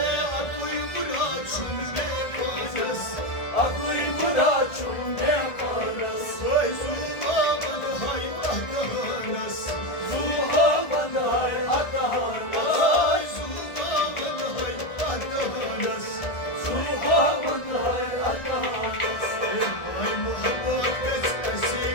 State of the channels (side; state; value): right; late; 1.5 ms